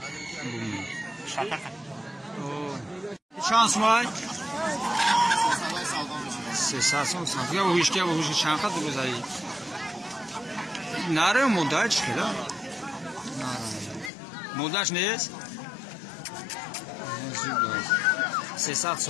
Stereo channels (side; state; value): right; drops out; at 14.1 s